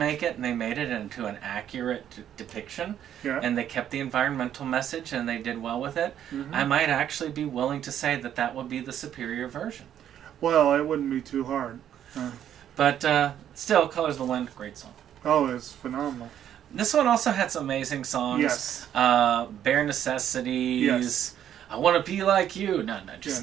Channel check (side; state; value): left; quieter; 10.2 dB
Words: it and they made it into an accurate depiction, and they kept the environmental message and they did well with it, I might actually be willing to say that that would be the superior version. Well, it wouldn't be too hard. But still, Colors of the Wind, great song. Oh, it's phenomenal. This one also had some amazing songs. Yes. Bare Necessities. Yes. I want to be like you. No,